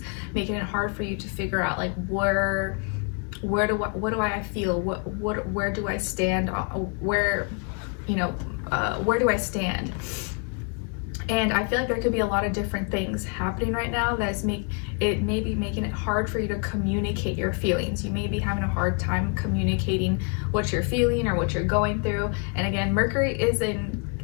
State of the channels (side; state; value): right; quieter; 36.2 dB